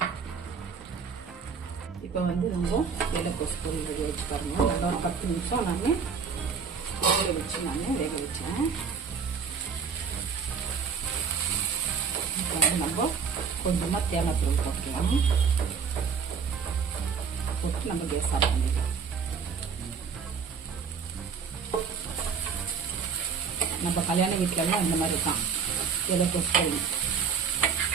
இப்போ வந்து ரொம்ப இலைக்கோசு பொரியல் வேக வச்சு பாருங்க. நல்லா ஒரு 10 நிமிஷம் நான் வேக வச்சேன். இப்போ வந்து நம்ம கொஞ்சமாக தேங்காய் தூள் போட்டுக்கலாம். போட்டு நம்ம கேஸ் ஆஃப் பண்ணிக்கலாம். நம்ம கல்யாண வீட்டிலலாம் இந்த மாதிரி தான் இலைக்கோசு பொரியல்.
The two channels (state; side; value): quieter; left; 6.0 dB